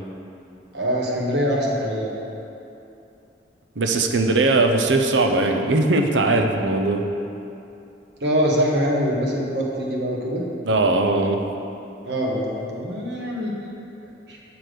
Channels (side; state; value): both; normal; correlation 0.19